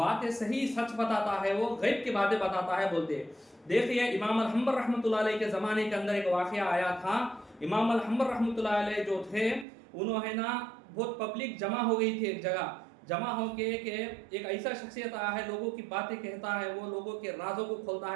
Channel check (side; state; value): left; drops out; at 9.7 s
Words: सही सच बताता है, वो गैब की बातें बताता है बोलते। देखिए, इमाम अल-हम्बर रहमतुल्लाह अलैह के ज़माने के अंदर एक वाक़या आया था। इमाम अल-हम्बर रहमतुल्लाह अलैह जो थे, उन्होंने ना बहुत पब्लिक जमा हो गई थी एक जगह। जमा हो के एक ऐसा शख्सियत आया है, लोगों की बातें कहता है, वो लोगों के राजों को खोलता